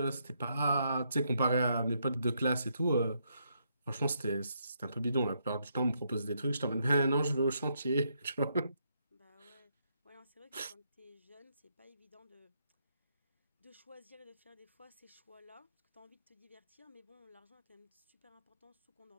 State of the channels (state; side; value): inverted; both; correlation -0.76